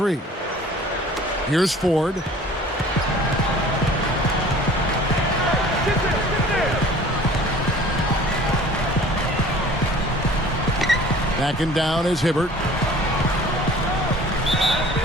Here's Ford. Backing down is Hibbert.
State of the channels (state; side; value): normal; both; correlation 0.47